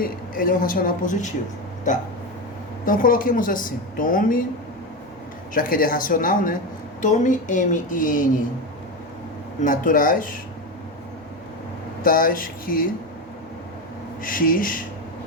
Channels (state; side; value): normal; both; correlation 0.17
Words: ele é um racional positivo, tá? Então, coloquemos assim, tome, já que ele é racional, né? Tome m e n naturais, tais que x